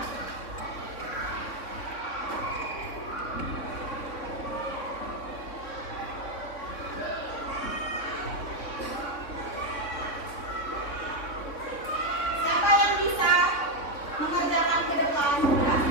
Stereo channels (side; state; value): right; late; 3.6 ms